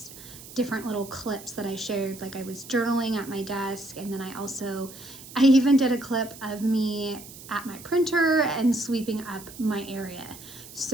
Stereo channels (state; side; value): noise; right; hiss, 16 dB below the sound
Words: different little clips that I shared. Like I was journaling at my desk, and then I even did a clip of me at my printer and sweeping up my area.